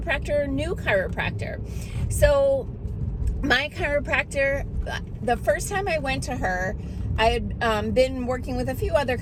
or new chiropractor. So my chiropractor, the first time I went to her, I had been working with a few other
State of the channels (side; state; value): both; identical; correlation 1.00